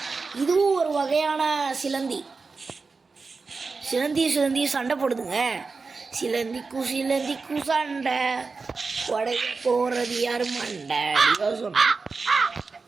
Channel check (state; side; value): quieter; left; 4.3 dB